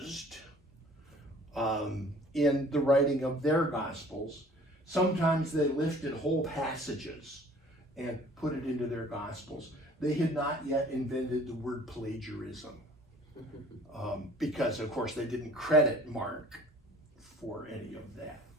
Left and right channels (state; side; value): normal; both; correlation 0.52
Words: in the writing of their gospels. Sometimes they lifted whole passages and put it into their gospels. They had not yet invented the word plagiarism, because of course they didn't credit Mark for any of that.